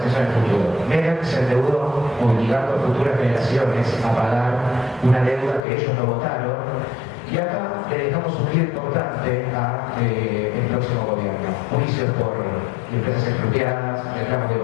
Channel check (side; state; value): right; drops out; at 5.6 s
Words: en el futuro. Menem se endeudó obligando a futuras generaciones a pagar una deuda que ellos no votaron, y acá le dejamos un giro importante al próximo gobierno. Juicios por empresas expropiadas, reclamos de